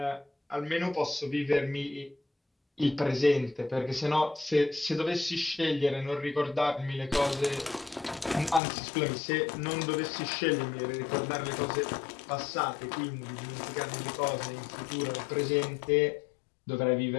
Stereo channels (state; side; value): drops out; right; at 8.6 s